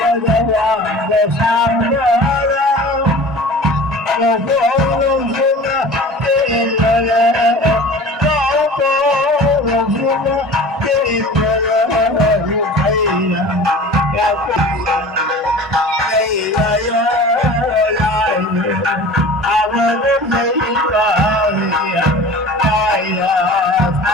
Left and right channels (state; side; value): normal; both; correlation 0.40